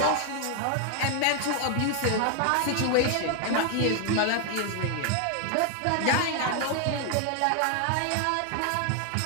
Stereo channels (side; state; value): both; different; correlation 0.00